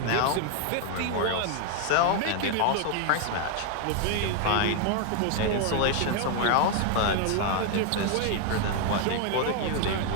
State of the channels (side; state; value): both; different; correlation 0.01